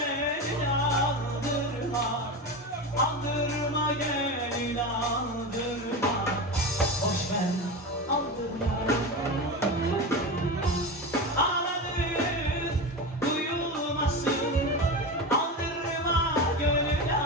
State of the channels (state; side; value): normal; both; correlation 0.23